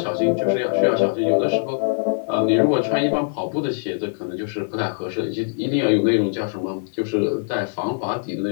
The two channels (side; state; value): right; silent; digital silence